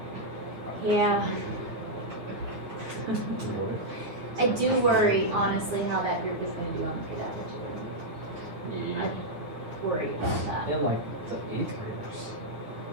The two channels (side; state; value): left; late; 9.5 ms